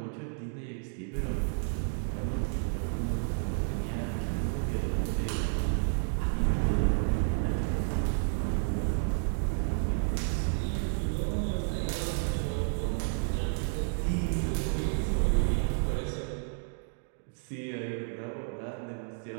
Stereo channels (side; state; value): left; silent; digital silence